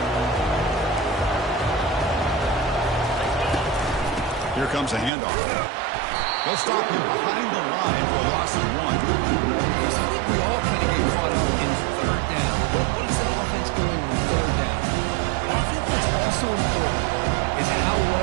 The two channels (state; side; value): drops out; left; at 5.1 s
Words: Here comes a handoff. They'll stop him behind the line for a loss of 1. I think we all kind of get caught up in third down. What is an offense doing on third down? But I think what's also important is how